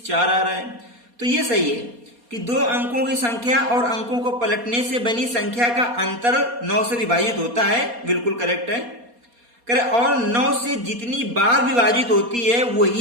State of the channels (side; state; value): left; late; 4.2 ms